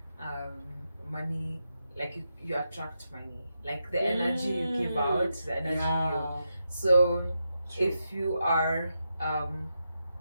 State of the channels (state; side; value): inverted; both; correlation -0.86